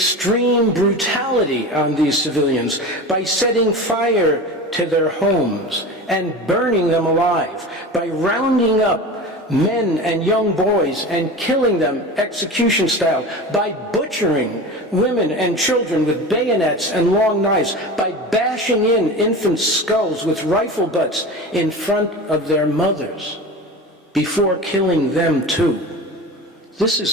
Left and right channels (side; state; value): both; normal; correlation 0.31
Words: brutality on these civilians by setting fire to their homes and burning them alive, by rounding up men and young boys and killing them execution style, by butchering women and children with bayonets and long knives, by bashing in infants' skulls with rifle butts in front of their mothers before killing them too. This